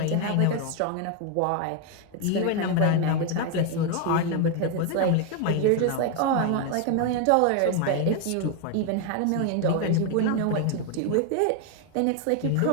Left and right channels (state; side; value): different; both; correlation 0.01